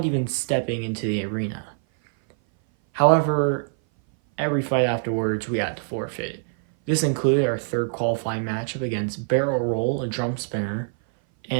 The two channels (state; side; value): silent; left; 58 dB below the other